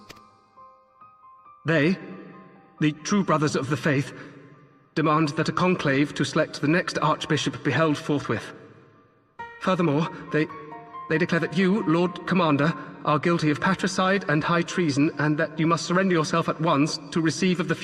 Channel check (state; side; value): identical; both; correlation 1.00